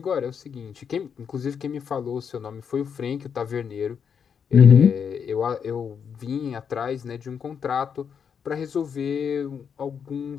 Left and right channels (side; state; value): right; quieter; 7.1 dB